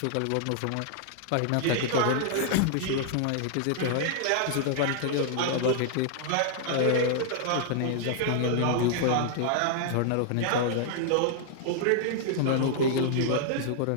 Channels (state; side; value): different; both; correlation -0.01